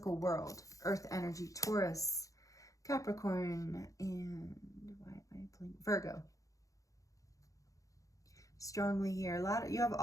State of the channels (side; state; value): right; late; 0.16 ms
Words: world. Earth energy, Taurus, Capricorn, and Virgo. Strongly here. You have